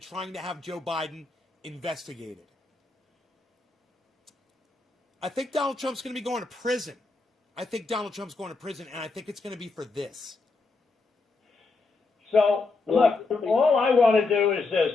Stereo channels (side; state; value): right; quieter; 3.7 dB